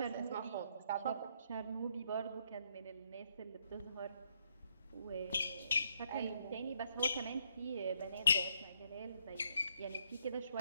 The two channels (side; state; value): both; inverted; correlation -0.72